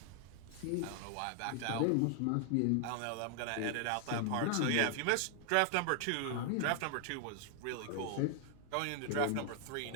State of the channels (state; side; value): different; both; correlation 0.00